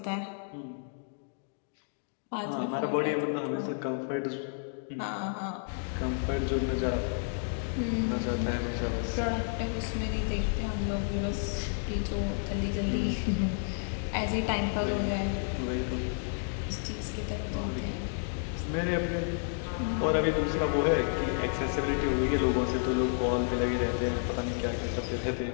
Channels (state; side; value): silent; right; 57 dB below the other